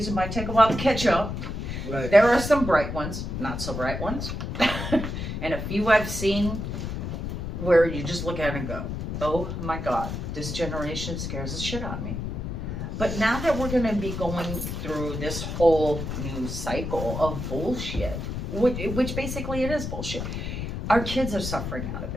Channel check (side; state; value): left; noise; rumble, 4 dB below the sound